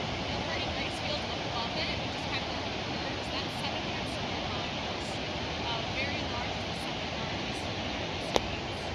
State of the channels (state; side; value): identical; both; correlation 1.00